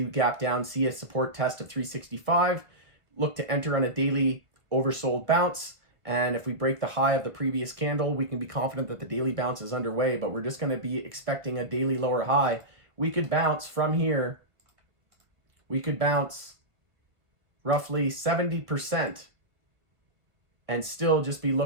gap down, see a support test of 365, look to enter on a daily oversold bounce. And if we break the high of the previous candle, we can be confident that the daily bounce is underway, but we're just going to be expecting a daily lower high. We could bounce from here. We could bounce roughly 70% and still just be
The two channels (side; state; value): left; late; 1.5 ms